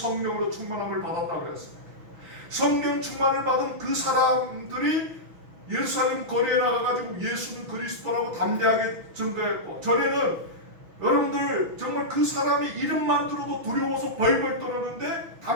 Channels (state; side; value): late; left; 6.2 ms